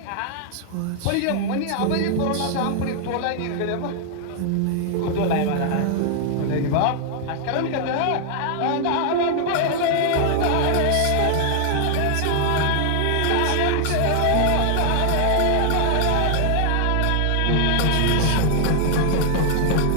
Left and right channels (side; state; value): both; different; correlation 0.00